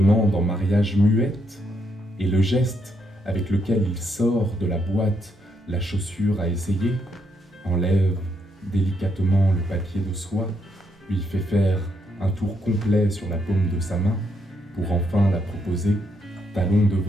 en mariage muette, et le geste avec lequel il sort de la boîte la chaussure à essayer, enlève délicatement le papier de soie, lui fait faire un tour complet sur la paume de sa main pour enfin la proposer, talon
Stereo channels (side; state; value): both; normal; correlation 0.77